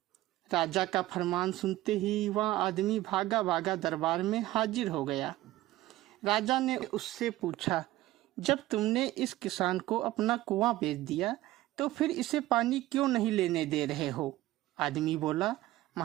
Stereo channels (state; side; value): quieter; left; 16.4 dB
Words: राजा का फरमान सुनते ही वह आदमी भागा भागा दरबार में हाजिर हो गया। राजा ने उससे पूछा, जब तुमने इस किसान को अपना कुआं बेच दिया तो फिर इसे पानी क्यों नहीं लेने दे रहे हो? आदमी बोला,